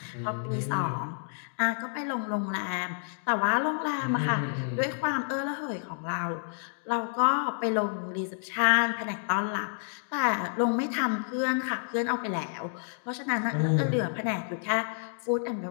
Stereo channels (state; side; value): silent; right; digital silence